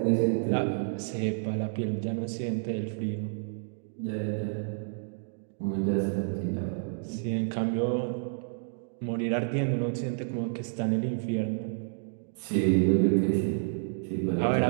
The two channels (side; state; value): left; silent; digital silence